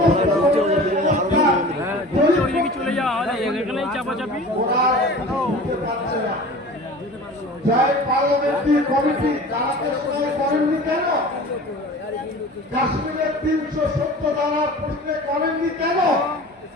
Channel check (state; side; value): normal; both; correlation 0.39